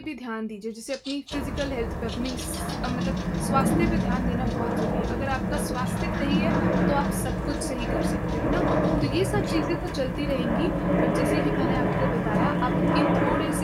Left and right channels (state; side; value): identical; both; correlation 1.00